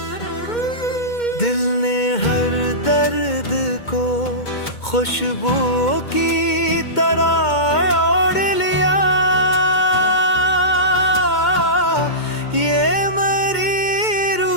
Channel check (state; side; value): late; right; 2.2 ms